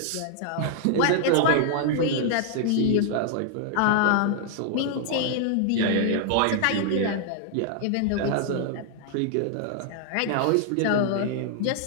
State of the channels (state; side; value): different; both; correlation 0.00